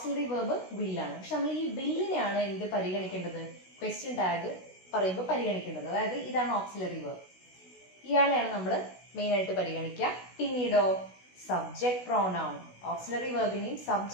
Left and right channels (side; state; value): right; late; 16 ms